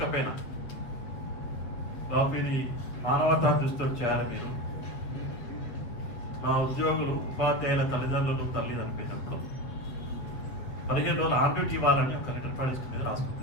బాబు ఇది మానవతా దృష్టితో చేయాలి మీరు. మా ఉద్యోగులు ఉపాధ్యాయుల తల్లిదండ్రులు తల్లి చనిపోయినప్పుడు 15 రోజులు ఆన్ డ్యూటీ ఇవ్వాలని ఒక లెటర్ ప్రాజెక్ట్ మీద రాసుకుని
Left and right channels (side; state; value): right; late; 7.7 ms